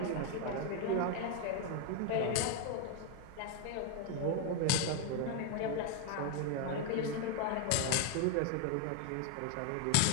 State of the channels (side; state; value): both; different; correlation 0.01